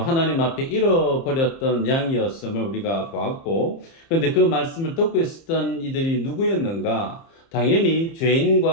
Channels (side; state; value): right; late; 30 ms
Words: 앞에 잃어버렸던 양이었음을 우리가 보았고, 그런데 그 말씀을 듣고 있었던 이들이 누구였는가? 당연히